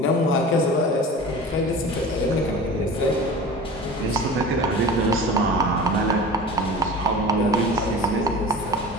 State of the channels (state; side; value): normal; both; correlation 0.37